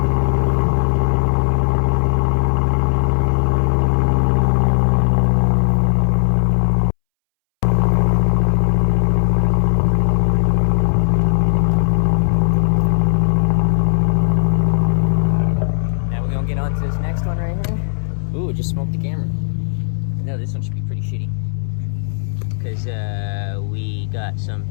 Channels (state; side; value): silent; right; 66 dB below the other